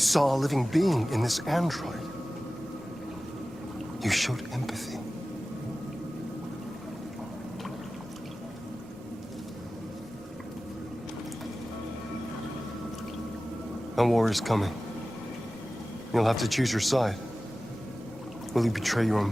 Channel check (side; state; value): left; noise; rumble, 24 dB below the sound